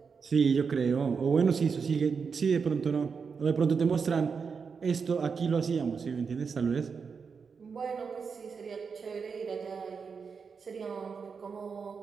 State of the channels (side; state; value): left; quieter; 5.7 dB